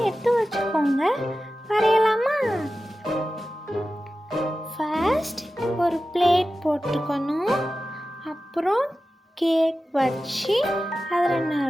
எடுத்து வச்சுக்கோங்க. வரையலாமா? ஃபர்ஸ்ட் ஒரு பிளேட் போட்டுக்கணும். அப்புறம் கேக் வச்சு அதில்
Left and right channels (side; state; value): both; normal; correlation 0.94